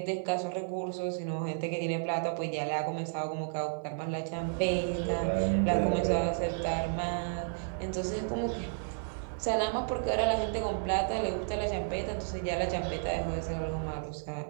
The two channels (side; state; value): left; silent; digital silence